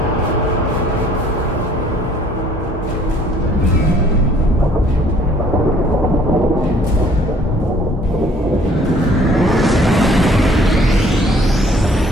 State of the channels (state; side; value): normal; both; correlation 0.58